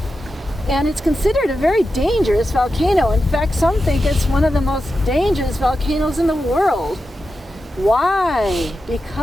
and it's considered a very dangerous volcano. In fact, some think it's one of the most dangerous volcanoes in the world. Why?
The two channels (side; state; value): both; normal; correlation 0.90